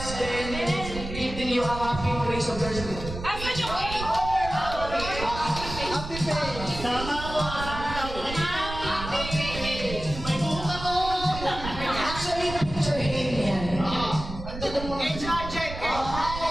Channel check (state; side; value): noise; right; rumble, 9 dB below the sound